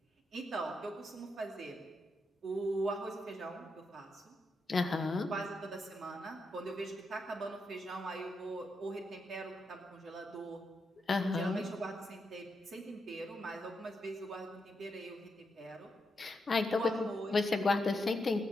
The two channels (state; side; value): normal; both; correlation 0.84